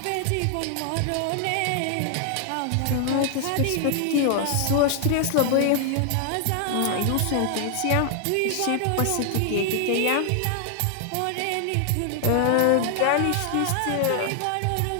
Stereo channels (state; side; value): different; both; correlation 0.00